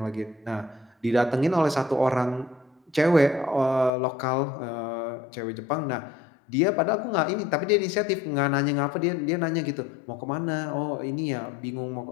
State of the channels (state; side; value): drops out; right; at 3.9 s